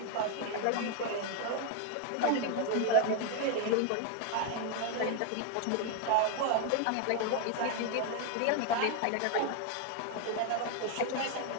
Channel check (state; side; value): different; both; correlation 0.01